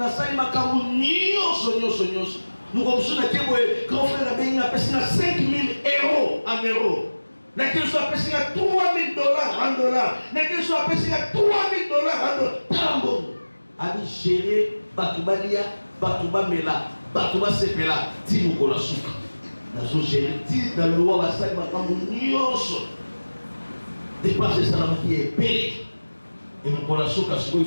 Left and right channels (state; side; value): inverted; both; correlation -1.00